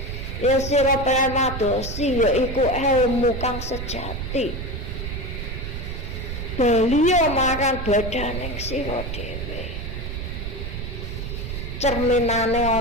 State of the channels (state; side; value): noise; right; rumble, 6 dB below the sound